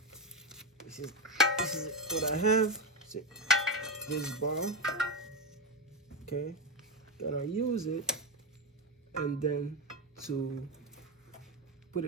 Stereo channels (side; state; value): both; normal; correlation 0.13